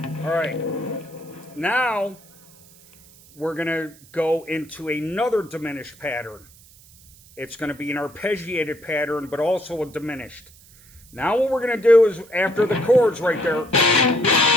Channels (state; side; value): noise; right; hiss, 25 dB below the sound